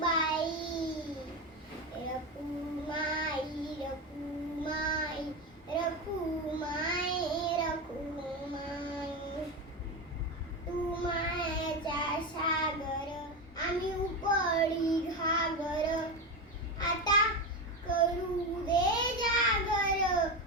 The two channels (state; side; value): normal; both; correlation 0.17